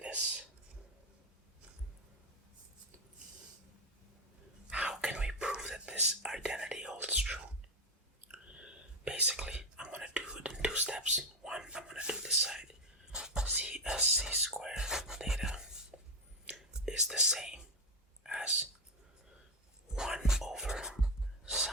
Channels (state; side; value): normal; both; correlation 0.12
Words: How can we prove that this identity holds true? Basically, I'm going to do it in 2 steps. One, I'm going to do this side. C as c squared theta is the same as 1 over